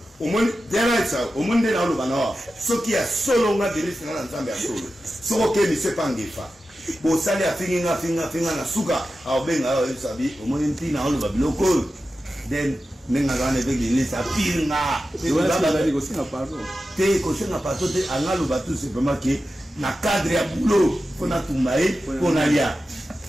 au monde derrière ça au monde na lo bana so qui a solo nga de l'est na nzambe ya solo so ke ni se pa ngefa bo sali afinga na suka au benga au sabi au monde ntina lo babiloko then nenga gane avec l'est a pinga te ko sina pato te angalo batu c'est vraiment que na cadre ya boulot qu'on a tombé qu'on a lié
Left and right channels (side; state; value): both; normal; correlation 0.92